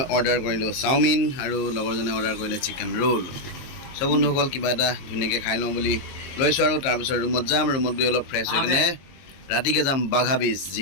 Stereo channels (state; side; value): late; right; 22 ms